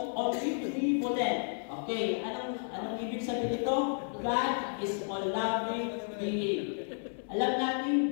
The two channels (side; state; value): right; silent; 56 dB below the other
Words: omnipotent. Okay, anong ibig sabihin ito? God is all-loving being. Alam